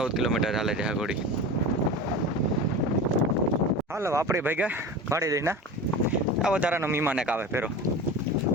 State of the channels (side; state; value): both; normal; correlation 0.32